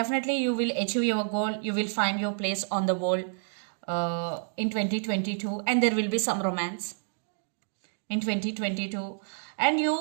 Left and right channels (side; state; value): left; silent; digital silence